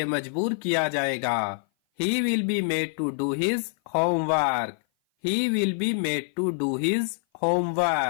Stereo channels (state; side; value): silent; right; 56 dB below the other